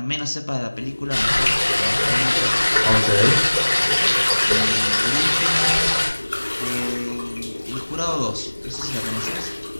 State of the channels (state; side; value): inverted; both; correlation -1.00